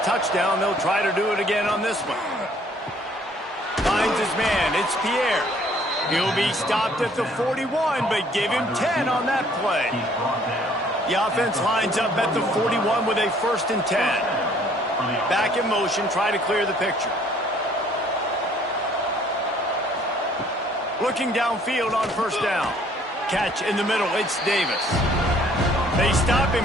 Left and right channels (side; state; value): both; normal; correlation 0.60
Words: touchdown. They'll try to do it again on this one. Finds his man. It's Pierre. He'll be stopped at the 41, but give him 10 on that play. The offense lines up at the 41 with a 1st and 10. Back in motion, try to clear the picture. Looking downfield on first down. Catch in the middle, it's Davis. They stop him